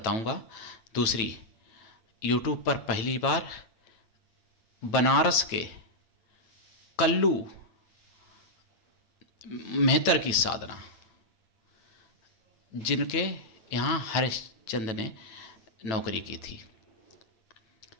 दूसरी। यूट्यूब पर पहली बार बनारस के कल्लू मेहतर की साधना, जिनके यहाँ हरिश्चंद्र ने नौकरी की थी।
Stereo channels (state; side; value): late; right; 9.1 ms